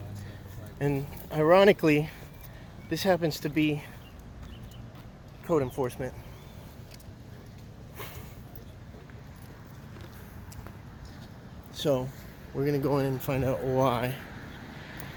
And ironically, this happens to be code enforcement. So we're gonna go in and find out why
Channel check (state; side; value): identical; both; correlation 1.00